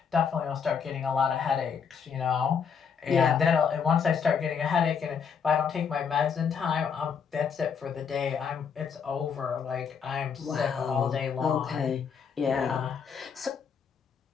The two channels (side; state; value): right; quieter; 6.6 dB